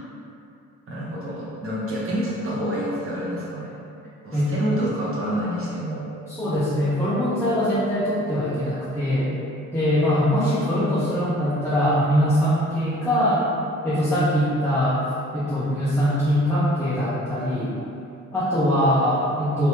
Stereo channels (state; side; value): normal; both; correlation 0.53